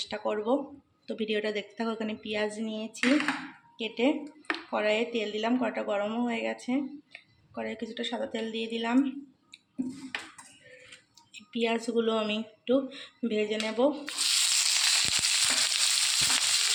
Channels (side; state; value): both; identical; correlation 1.00